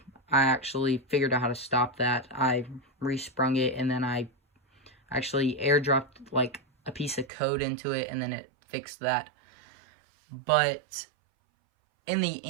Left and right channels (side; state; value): left; drops out; at 7.3 s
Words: I actually figured out how to stop that. I resprung it, and then I actually airdropped like a piece of code into it, and then it fixed that. But in the